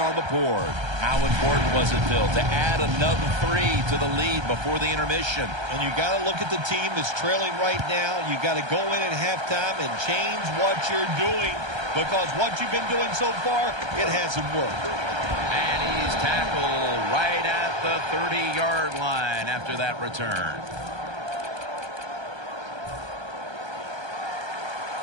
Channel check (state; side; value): late; left; 1.3 ms